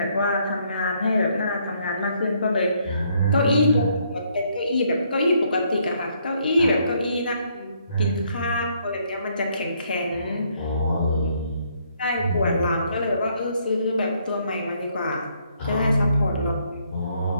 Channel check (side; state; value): both; inverted; correlation -0.70